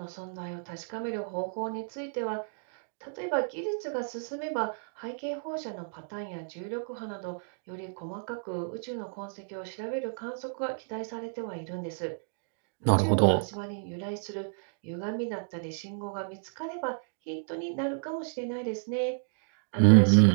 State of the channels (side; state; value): left; silent; digital silence